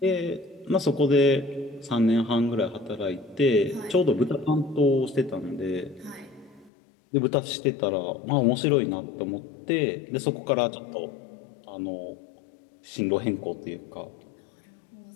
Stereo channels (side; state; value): right; drops out; at 6.7 s